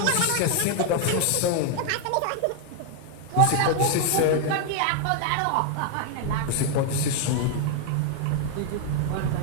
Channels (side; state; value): both; different; correlation 0.00